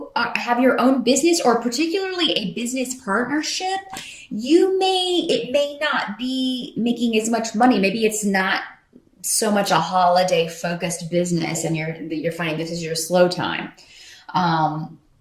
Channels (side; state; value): both; identical; correlation 1.00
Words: have your own business, or particularly a business partnership, it may not be making as much money. Maybe it's not so much a holiday focused business, and you're finding this is your slow time.